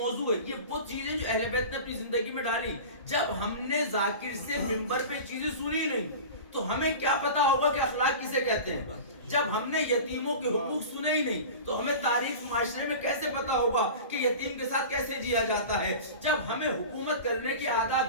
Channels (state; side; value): inverted; both; correlation -0.34